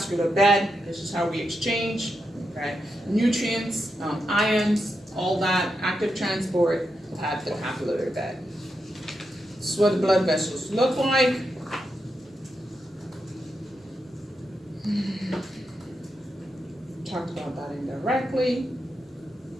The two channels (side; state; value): both; normal; correlation 0.85